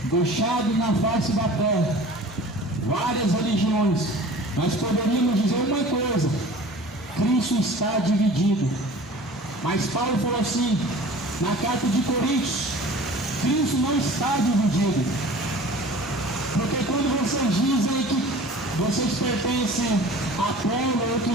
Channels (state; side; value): normal; both; correlation 0.43